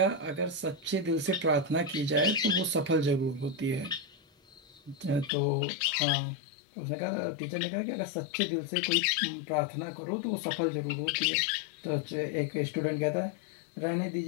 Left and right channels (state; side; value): drops out; right; at 5.3 s